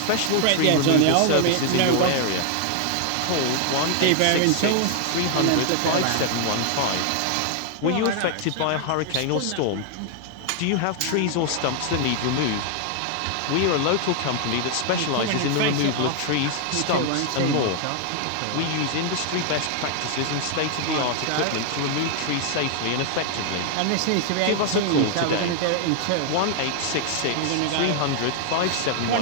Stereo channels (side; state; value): both; different; correlation 0.00